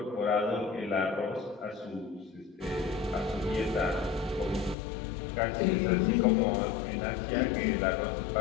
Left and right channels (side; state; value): right; drops out; at 4.8 s